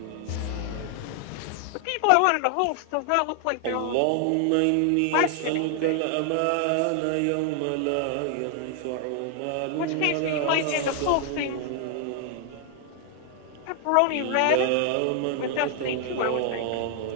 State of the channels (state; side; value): different; both; correlation 0.00